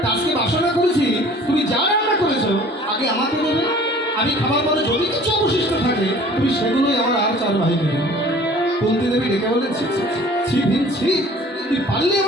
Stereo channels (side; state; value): both; normal; correlation 0.49